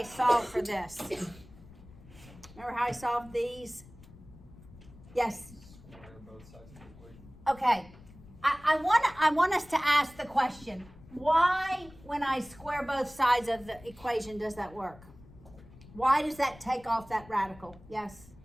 solve for this? Remember how I solved these? Yes? Square both sides of the equation. Okay. I want us to ask the question, why, when I square both sides of the equation, does that work? Why does that take off that radical? Yes?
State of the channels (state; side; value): noise; left; rumble, 21 dB below the sound